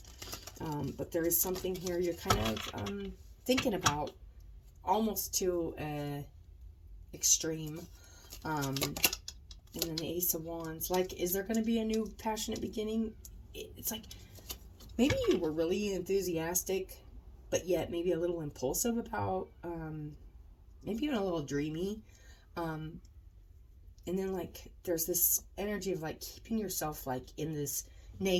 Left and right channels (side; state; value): both; identical; correlation 1.00